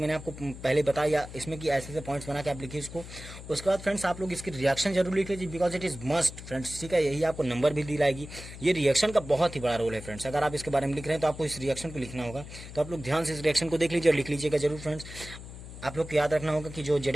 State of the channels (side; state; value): left; noise; hum, 13 dB below the sound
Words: आपको पहले बताया इसमें कि ऐसे पॉइंट्स बना के आप लिखिए इसको। उसके बाद फ्रेंड्स आप लोग इसकी रिएक्शन जरूर लिख लीजिए because it is must friends, ठीक है, यही आपको नंबर भी दिलाएगी। ये रिएक्शन का बहुत ही बड़ा रोल है फ्रेंड्स। अगर आप इसके बारे में लिख रहे हैं तो आपको इस रिएक्शन को लिखना होगा, तो आप लोग ध्यान से इस रिएक्शन को देख लीजिए और लिख लीजिएगा जरूर फ्रेंड्स। आप लोग को याद रखना होगा कि जो